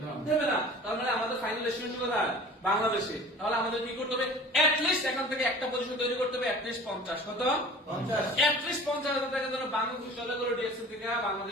দেবে না। তার মানে আমাদের ফাইনাল ডেস্টিনেশন কোথায়? বাংলাদেশে। তাহলে আমাদের কি করতে হবে? অ্যাটলিস্ট এখান থেকে একটা পজিশন তৈরি করতে হবে, অ্যাটলিস্ট 50। কত? 50। অ্যাটলিস্ট 50,000 টাকা যেন বাংলাদেশ চলে গেল ডিএক্সএন থেকে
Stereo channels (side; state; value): both; normal; correlation 0.43